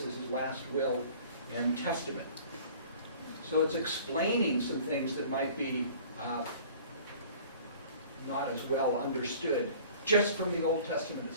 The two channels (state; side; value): inverted; both; correlation -0.48